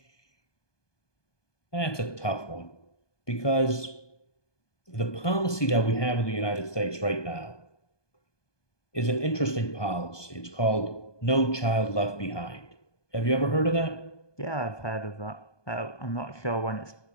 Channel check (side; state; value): right; late; 1.2 ms